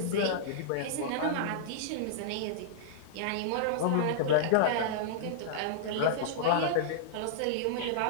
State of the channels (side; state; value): both; different; correlation -0.02